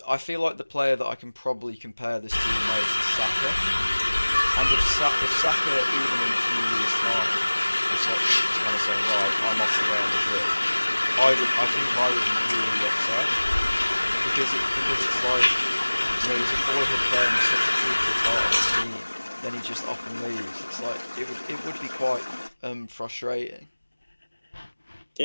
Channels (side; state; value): both; inverted; correlation -1.00